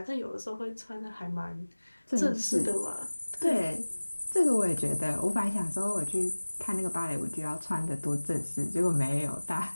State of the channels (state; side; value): inverted; both; correlation -1.00